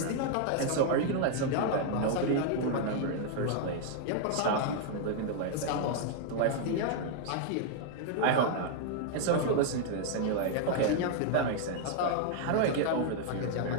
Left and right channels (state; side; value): different; both; correlation 0.00